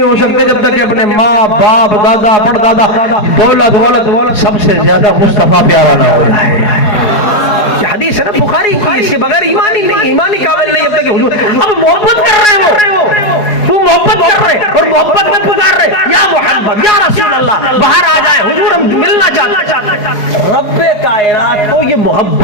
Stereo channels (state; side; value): late; right; 4.8 ms